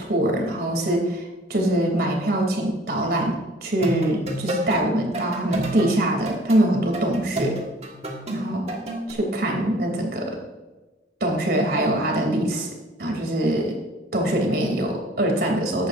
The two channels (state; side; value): normal; both; correlation 0.52